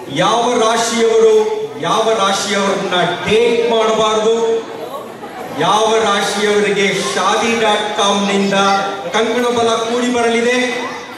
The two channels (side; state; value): both; identical; correlation 1.00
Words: ಯಾವ ರಾಶಿಯವರನ್ನ ಡೇಟ್ ಮಾಡಬಾರದು, ಯಾವ ರಾಶಿಯವರಿಗೆ shaadi.com ನಿಂದ ಕಂಕಣ ಬಲ ಕೂಡಿ ಬರಲಿದೆ,